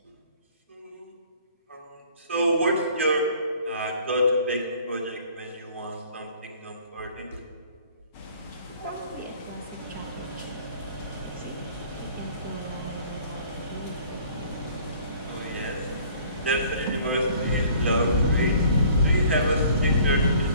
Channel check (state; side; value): inverted; both; correlation -0.53